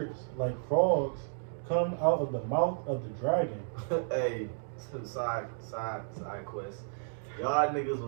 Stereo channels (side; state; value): left; silent; digital silence